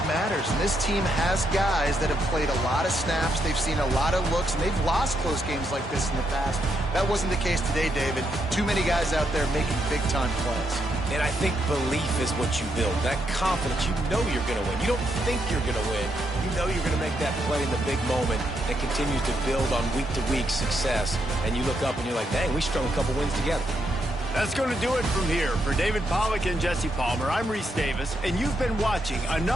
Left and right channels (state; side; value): normal; both; correlation 0.79